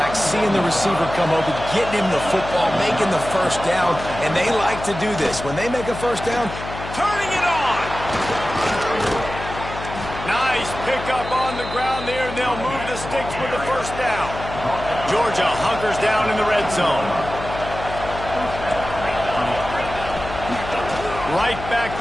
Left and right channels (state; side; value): noise; left; hum, 10 dB below the sound